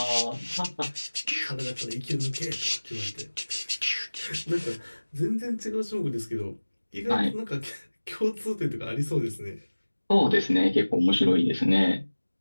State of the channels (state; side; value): inverted; both; correlation -1.00